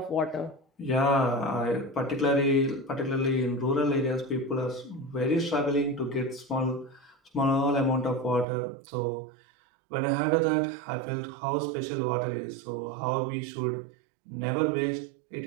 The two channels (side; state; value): left; drops out; at 8.5 s